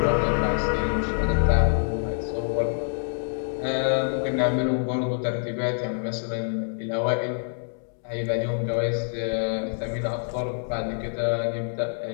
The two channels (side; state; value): right; silent; digital silence